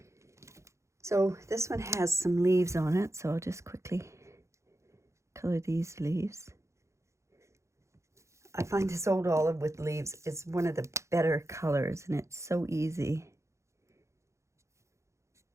So this one has some leaves on it, so I'll just quickly color these leaves. I find this old olive with leaves is one of the better colors, and it's so easy.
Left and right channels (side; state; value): left; late; 0.14 ms